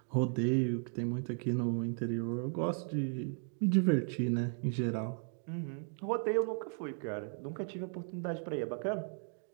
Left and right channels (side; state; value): left; silent; 54 dB below the other